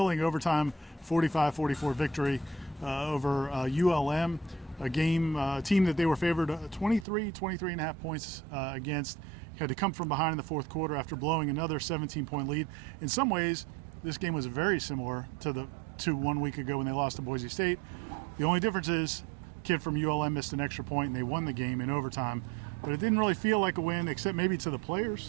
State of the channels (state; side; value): drops out; left; at 7.1 s